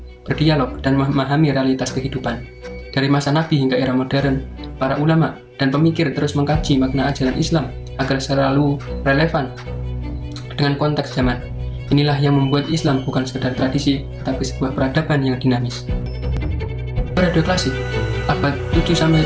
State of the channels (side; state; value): both; identical; correlation 1.00